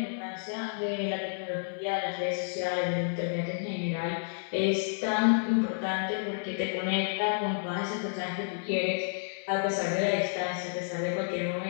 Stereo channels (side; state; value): right; silent; digital silence